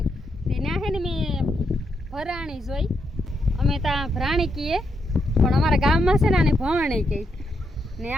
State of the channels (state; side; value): normal; both; correlation 0.81